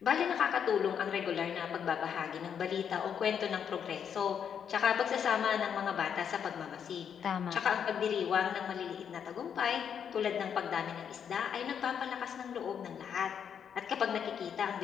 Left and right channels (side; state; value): right; quieter; 7.9 dB